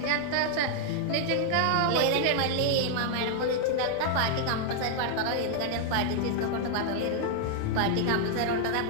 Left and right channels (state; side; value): different; both; correlation 0.00